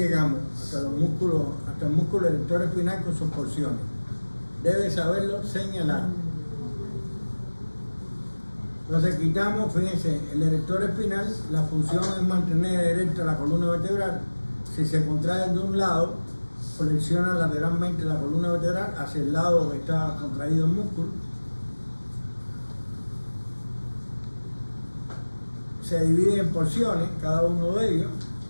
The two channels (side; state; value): both; inverted; correlation -1.00